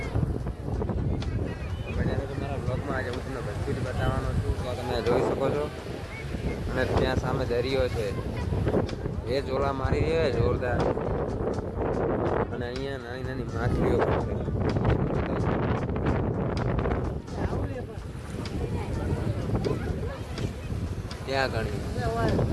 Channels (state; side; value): identical; both; correlation 1.00